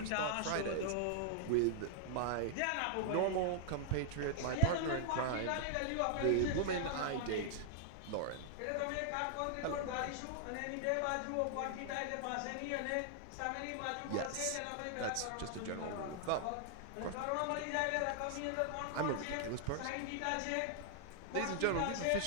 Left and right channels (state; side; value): different; both; correlation -0.01